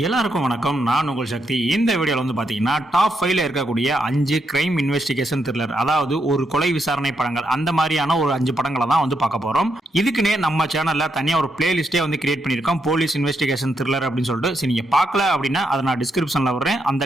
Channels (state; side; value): normal; both; correlation 0.80